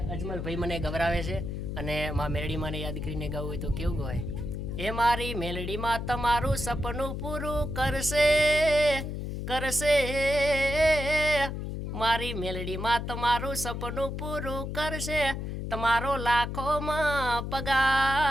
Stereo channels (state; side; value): noise; left; hum, 5 dB below the sound